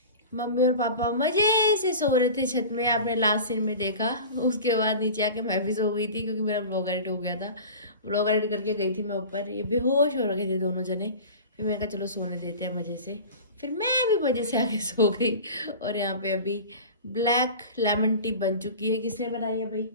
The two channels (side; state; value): both; inverted; correlation -0.35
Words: मम्मी और पापा मजे से सो रहे थे छत में, आपने लास्ट सीन में देखा। उसके बाद नीचे आके मैं भी सो गई थी क्योंकि मेरा व्लॉग एडिट हो गया था। व्लॉग एडिट करके गई थी मैं ऊपर, ये बेहोश हो रखे थे दोनों जने। फिर मैंने कहा चलो सोने देते हैं मजे से। फिर मैं भी मजे से आके सो गई। और यहाँ पे अभी ब्लैक लेमन टी बन चुकी है। किसने बनाई है भाई?